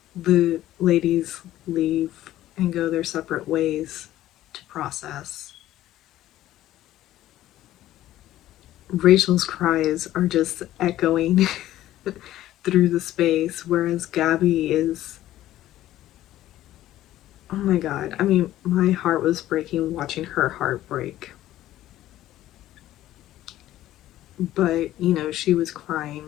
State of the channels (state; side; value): quieter; right; 14.1 dB